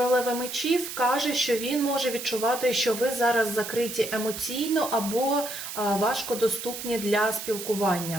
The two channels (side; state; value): right; noise; hiss, 8 dB below the sound